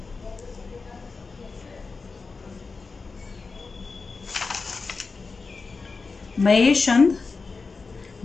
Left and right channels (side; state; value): right; quieter; 4.3 dB